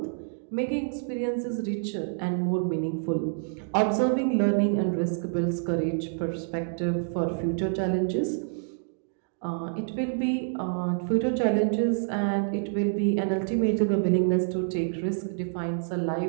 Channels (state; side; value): silent; left; digital silence